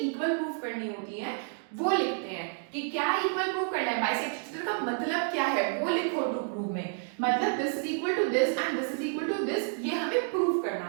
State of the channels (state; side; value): silent; left; 58 dB below the other